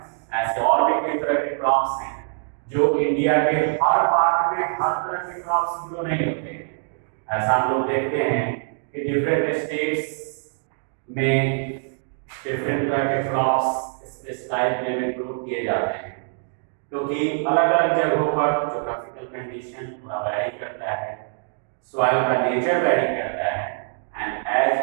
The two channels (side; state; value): left; silent; digital silence